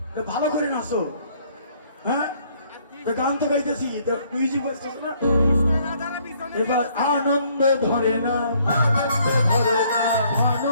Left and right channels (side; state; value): both; inverted; correlation -0.64